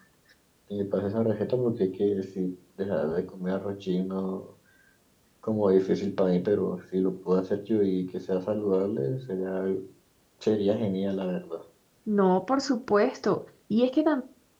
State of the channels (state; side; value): identical; both; correlation 1.00